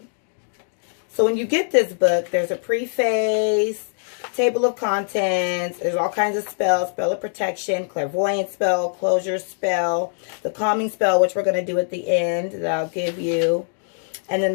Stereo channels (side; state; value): right; silent; digital silence